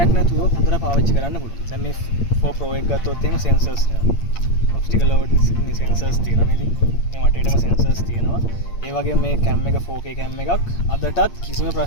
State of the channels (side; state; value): right; late; 8.7 ms